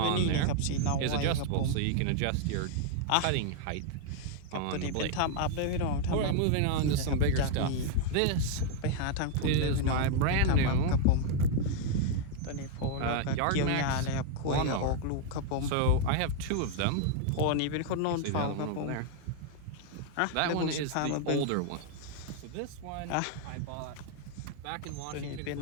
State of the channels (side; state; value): both; different; correlation 0.00